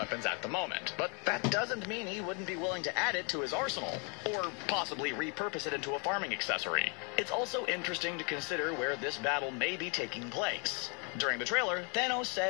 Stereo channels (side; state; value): right; quieter; 35.0 dB